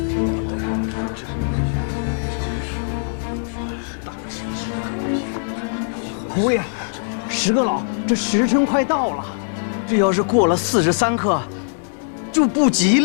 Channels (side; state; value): right; silent; 63 dB below the other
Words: 侯爷，石阁老，这时辰快到了，这要是过了43刻，就不吉